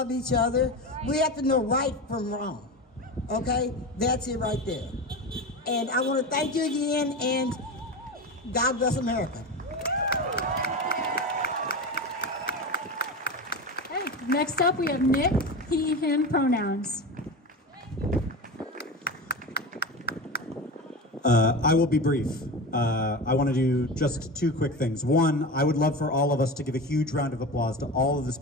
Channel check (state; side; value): normal; both; correlation 0.25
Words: each other. We have to know right from wrong. Okay? That's it right there. And I want to thank you again, and God bless America. Okay, next up we have Nick, he, him pronouns. I will be brief. I want to do just two quick things. One, I would love for all of us to give a huge round of applause to all of the